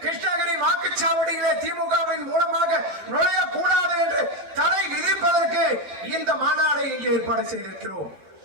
கிருஷ்ணகிரி வாக்குச்சாவடியிலே திமுகவின் மூலமாக நுழையக்கூடாது என்று தடை விதிப்பதற்கு இந்த மாநாடை இங்கே ஏற்பாடு செய்திருக்கிறோம்.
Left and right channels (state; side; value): late; left; 12 ms